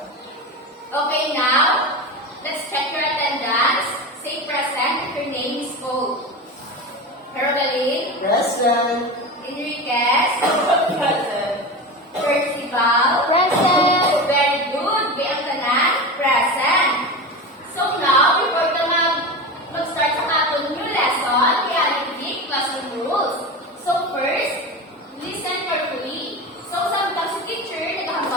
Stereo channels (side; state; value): both; normal; correlation 0.25